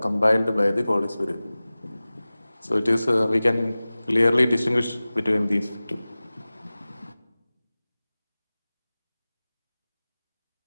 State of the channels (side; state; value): both; inverted; correlation -0.98